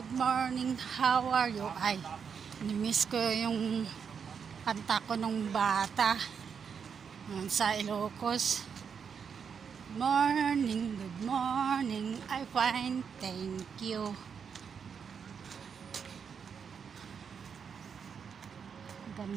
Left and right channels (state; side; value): quieter; left; 6.7 dB